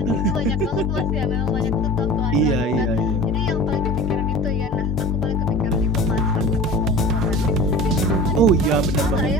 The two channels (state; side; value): normal; both; correlation 0.38